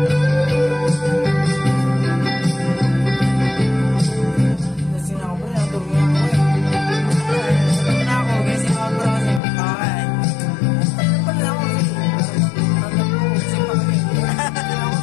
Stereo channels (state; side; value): drops out; right; at 9.4 s